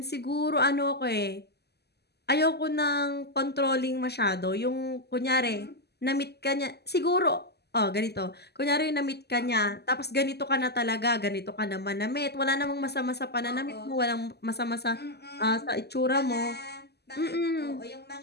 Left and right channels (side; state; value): right; late; 0.48 ms